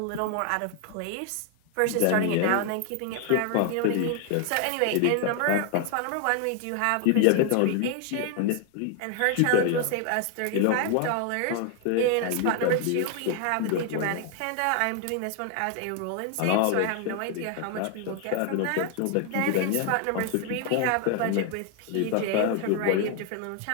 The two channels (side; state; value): both; different; correlation 0.00